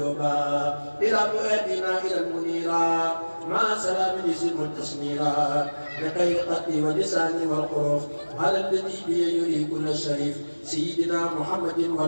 إلى فؤادنا إلى المنيرا مع سلام يسم تسميرا بخير قتلي ولساني والحروف على الذي بي يري كل الشريف سيدنا محمد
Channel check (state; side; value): inverted; both; correlation -1.00